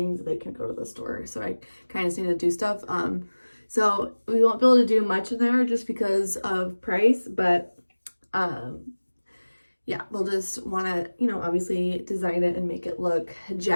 They can go to the store. So I kind of need to do stuff. So we won't be able to do much in there just because of price, but yeah, we'll just want to, you know, obviously design it and make it look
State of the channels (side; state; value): both; inverted; correlation -1.00